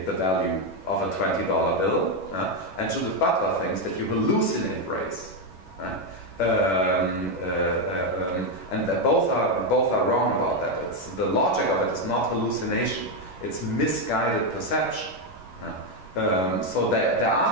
the value of a $20 bill, and Judith Butler thinks that you hallucinate race. And that both are wrong about that. The logic of it is not hallucination; it's misguided perception. So there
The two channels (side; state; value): right; late; 11 ms